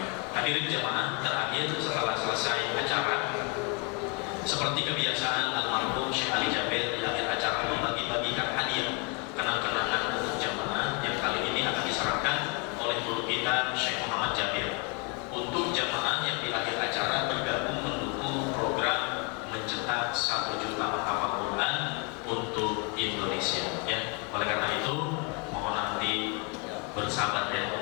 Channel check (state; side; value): quieter; right; 33.4 dB